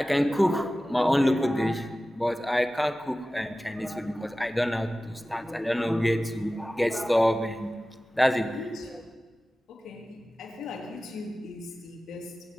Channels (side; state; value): both; normal; correlation 0.96